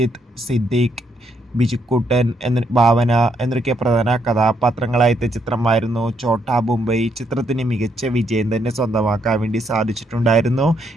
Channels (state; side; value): normal; both; correlation 0.74